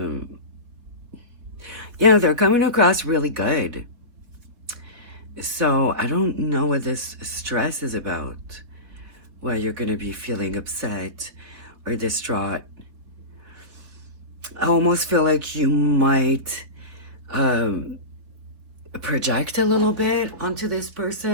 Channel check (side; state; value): left; late; 4.1 ms